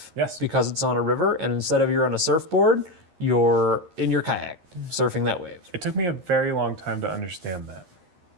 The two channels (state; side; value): late; left; 11 ms